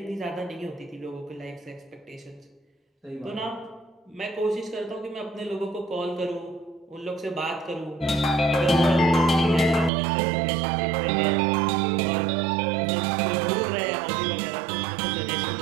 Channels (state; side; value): drops out; left; at 9.9 s